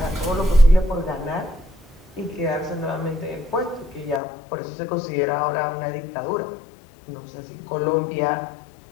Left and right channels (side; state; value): right; drops out; at 4.2 s